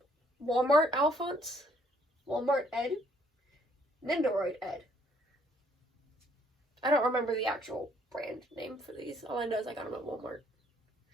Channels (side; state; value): both; normal; correlation 0.64